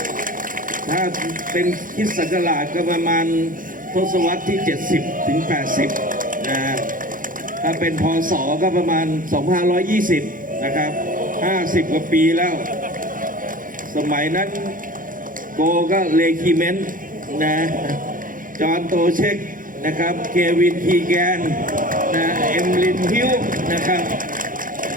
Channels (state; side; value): late; left; 0.40 ms